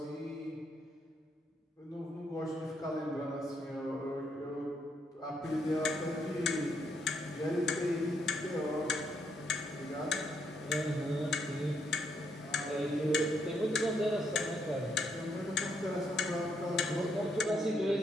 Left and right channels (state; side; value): normal; both; correlation 0.75